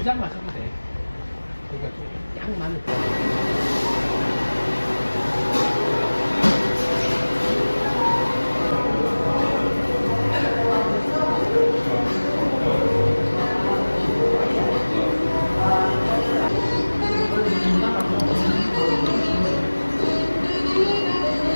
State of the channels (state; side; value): inverted; both; correlation -1.00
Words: 잔 마셔도 돼. 그러니까 좀 많을 거.